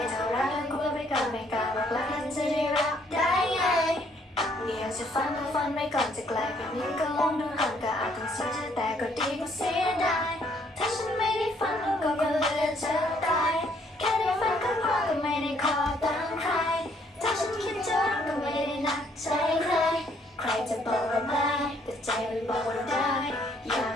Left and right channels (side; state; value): both; normal; correlation 0.66